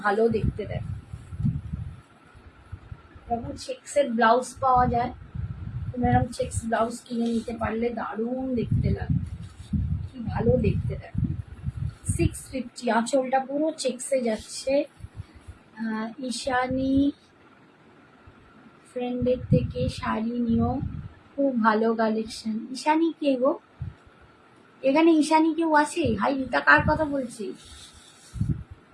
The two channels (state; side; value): identical; both; correlation 1.00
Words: ভালো দেখতে দেখ। এরকম চেক্সের ব্লাউজ পাওয়া যায়, তোমরা এরকম চেক্স ব্লাউজ কিনে নিতে পারলে দারুণ দেখতে লাগে, কি ভালো দেখতে দেখ। 650, আঁচলটা পুরো চেক্সে যাচ্ছে। ঈশানী ফ্রেন্ডের থেকে শাড়ি নিও, খুব ভালো কালেকশন। ঈশানী কে গো? এখানে ঈশানী কেউ আছে? হাই রীতা, কার কথা বলছি?